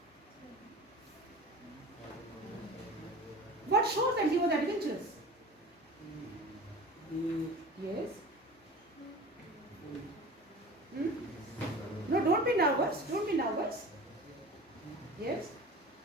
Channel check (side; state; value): both; normal; correlation 0.38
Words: What shows that he was adventurous? Yes. No, don't be nervous. Don't be nervous. Yes.